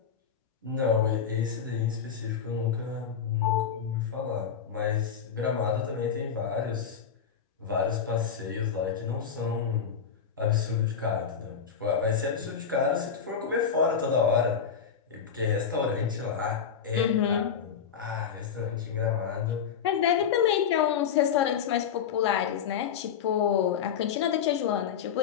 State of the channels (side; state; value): right; quieter; 7.3 dB